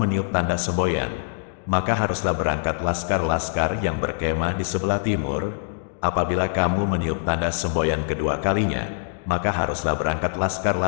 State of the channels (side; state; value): right; silent; digital silence